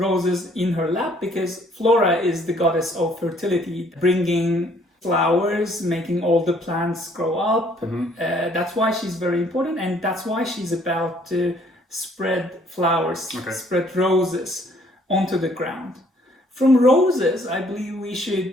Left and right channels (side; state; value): both; normal; correlation 0.62